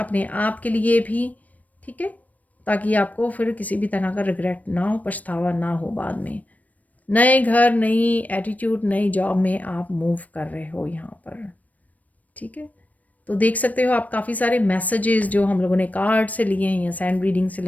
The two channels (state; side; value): late; right; 0.073 ms